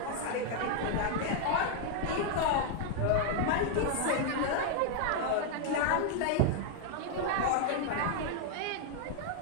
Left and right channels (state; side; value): different; both; correlation 0.00